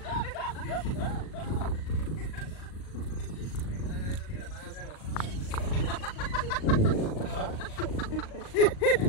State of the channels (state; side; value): late; right; 38 ms